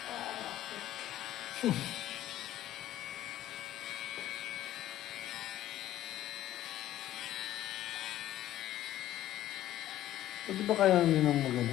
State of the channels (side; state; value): right; quieter; 13.5 dB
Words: Pwede ba kaya nyo nang